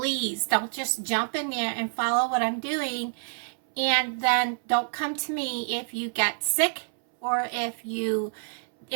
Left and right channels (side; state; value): left; silent; 60 dB below the other